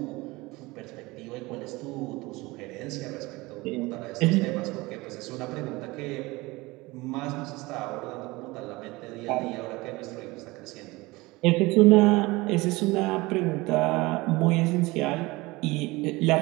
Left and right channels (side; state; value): left; quieter; 22.0 dB